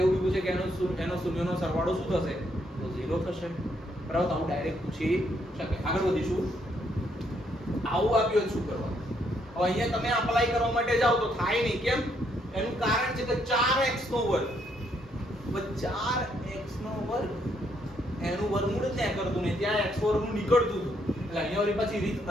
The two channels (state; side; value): normal; both; correlation 0.73